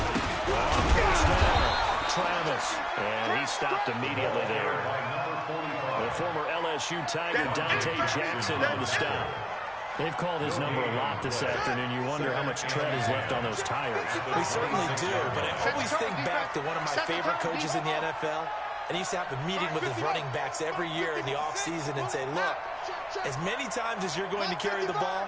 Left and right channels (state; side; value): identical; both; correlation 1.00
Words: On 1st down, Travis. And he stopped immediately there. The former LSU Tiger, Dante Jackson, on the stop. They've called his number a lot this afternoon. You wonder how much tread is left on those tires. We certainly do, but I always think back to one of my favorite coaches in the NFL. And he used to have a meeting with his running backs every year in the offseason and say, look, as many times as you're going to carry the ball,